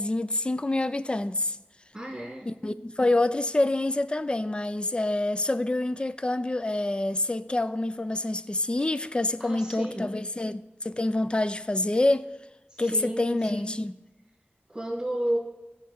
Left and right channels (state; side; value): normal; both; correlation 0.76